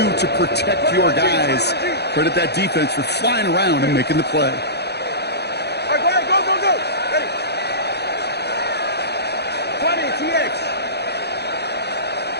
to protect your guys. Credit that defense for flying around and making the play. All right, go, go, go. Ready. 20, TX.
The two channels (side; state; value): right; late; 0.48 ms